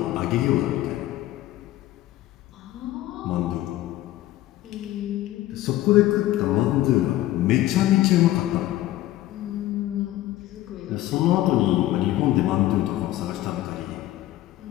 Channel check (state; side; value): quieter; right; 15.1 dB